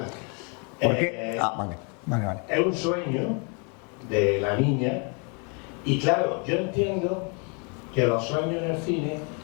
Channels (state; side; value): quieter; right; 35.7 dB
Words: ¿Por qué? Vale. Es un sueño de la niña y claro, yo entiendo que los sueños en el cine